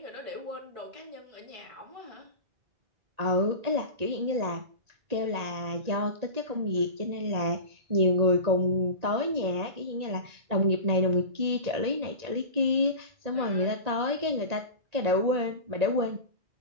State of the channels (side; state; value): left; late; 1.8 ms